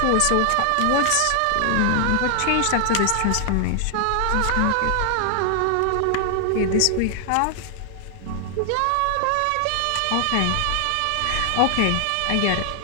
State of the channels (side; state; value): both; different; correlation 0.00